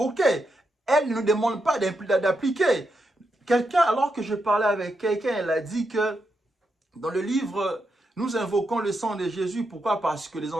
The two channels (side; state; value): both; normal; correlation 0.83